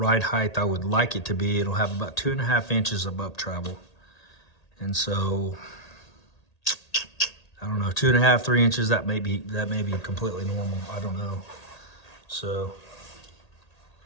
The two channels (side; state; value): right; late; 1.8 ms